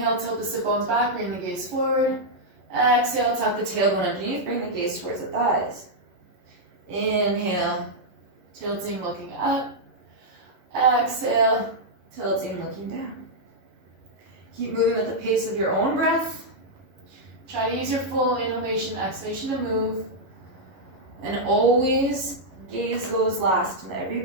tilt the sit bones back, bring the gaze forward. Exhale, tuck the tailbone underneath, bring the gaze towards the thighs. Inhale, tilting, looking up. Exhale, tilting, looking down. Keep moving at the pace of your own breath. Try to use your full inhalation, exhalation to move. And always gaze goes last in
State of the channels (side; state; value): left; late; 11 ms